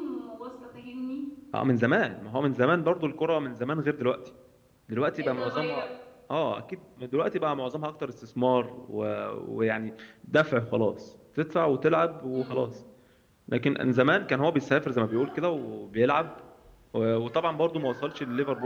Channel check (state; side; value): identical; both; correlation 1.00